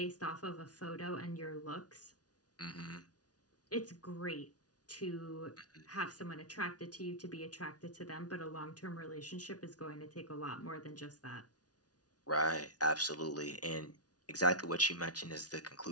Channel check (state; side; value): late; right; 0.68 ms